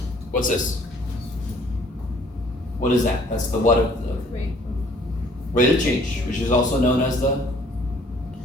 What's this? What is that? That's the what of the rate of change, which is also known as the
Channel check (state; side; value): normal; both; correlation 0.58